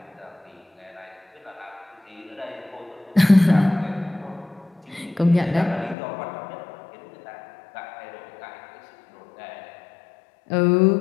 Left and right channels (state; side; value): drops out; right; at 6.0 s